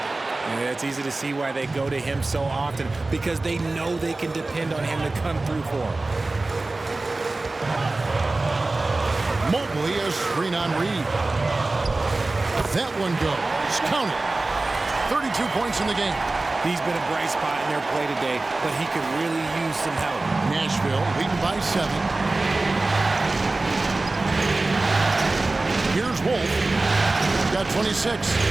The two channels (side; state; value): left; quieter; 3.2 dB